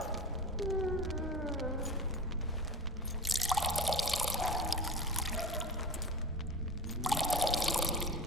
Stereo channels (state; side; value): normal; both; correlation 0.32